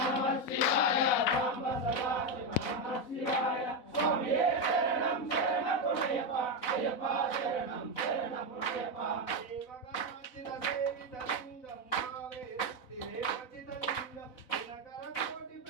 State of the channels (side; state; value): right; late; 4.0 ms